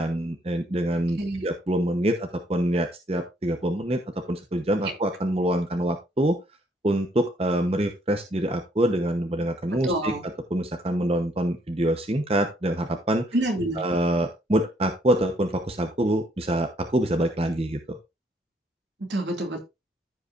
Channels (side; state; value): both; normal; correlation 0.67